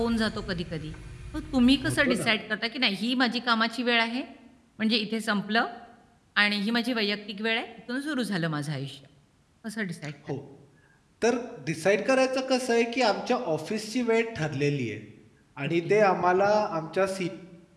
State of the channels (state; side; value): identical; both; correlation 1.00